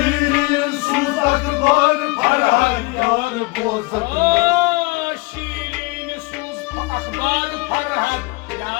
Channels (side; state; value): right; quieter; 24.5 dB